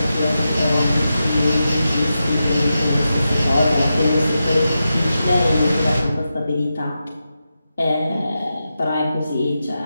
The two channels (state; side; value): inverted; both; correlation -0.89